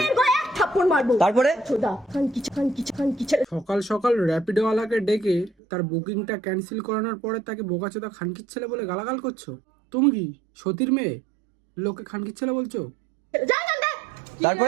গলায় এক থাপ্পড় মারবো। তারপরে ছোদা খান কি। সকাল সকাল র্যাপিডোওয়ালাকে ডেকে তার বুকিংটা ক্যান্সেল করানোর পরে তাকে বোকাচোদা খানকির ছেলে বলে গালাগাল করছো? তুমি কি সতীর মেয়ে, লোকে খানকির ছেলে বলছো? যা যা যা।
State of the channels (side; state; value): left; drops out; at 5.5 s